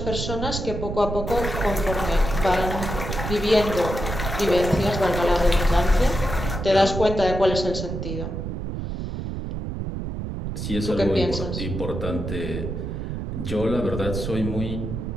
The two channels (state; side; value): noise; right; rumble, 5 dB below the sound